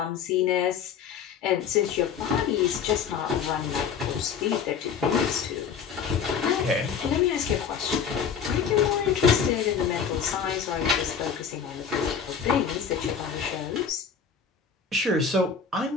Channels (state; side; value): quieter; right; 6.9 dB